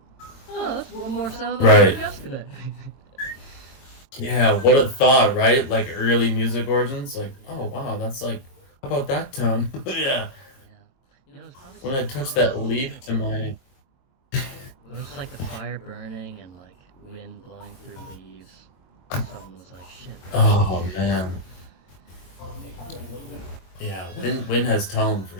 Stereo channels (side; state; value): right; late; 22 ms